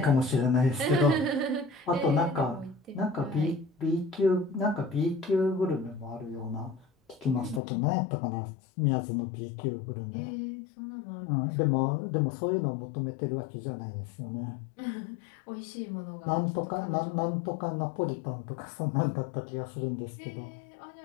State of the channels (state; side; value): drops out; right; at 7.6 s